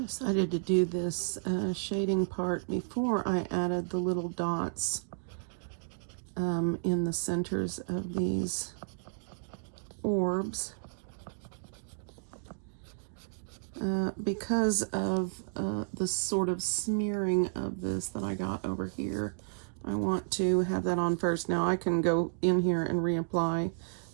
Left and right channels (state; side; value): silent; left; digital silence